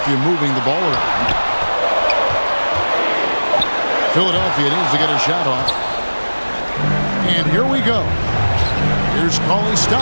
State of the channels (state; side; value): inverted; both; correlation -1.00